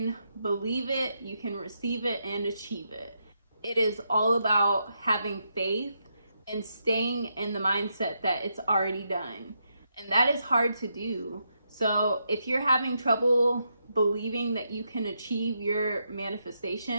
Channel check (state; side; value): inverted; both; correlation -0.81